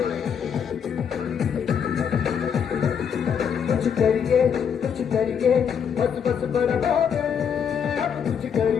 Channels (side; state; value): right; quieter; 7.5 dB